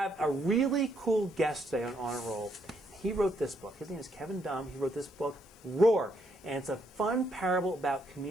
a really cool guest today on a Roll. He wrote this book. His name is Kevin Daum. He wrote this book, Roar. And it's a fun parable about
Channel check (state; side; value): noise; left; hiss, 30 dB below the sound